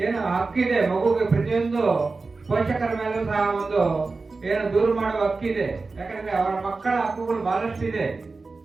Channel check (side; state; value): left; quieter; 3.9 dB